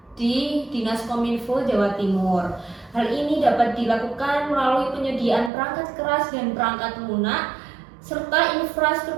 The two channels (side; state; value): left; drops out; at 5.5 s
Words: di Dinas Kominfo Jawa Timur. Hal ini dapat dilakukan melalui penyediaan perangkat keras dan perangkat lunak serta